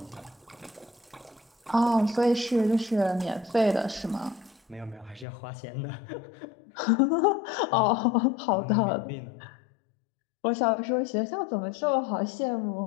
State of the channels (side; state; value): right; drops out; at 5.2 s